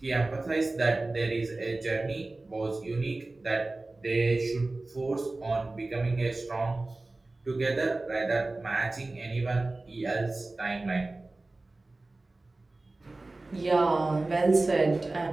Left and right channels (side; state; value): left; quieter; 3.1 dB